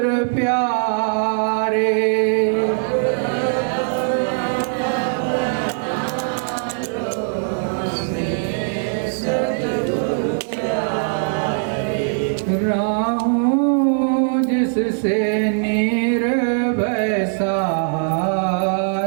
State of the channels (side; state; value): left; silent; digital silence